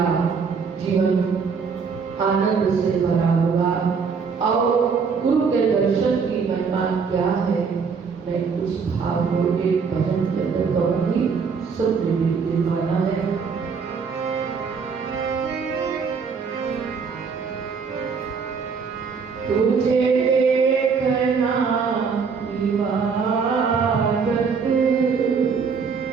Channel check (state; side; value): quieter; left; 5.6 dB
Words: जीवन आनंद से भरा होगा। और गुरु के दर्शन की महिमा क्या है, मैं उस भाव को एक भजन के अंदर कहूंगी, सब मिलकर माना है। तुझे देखना इबादत,